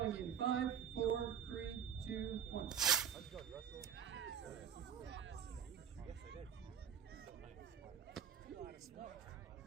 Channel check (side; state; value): left; quieter; 8.2 dB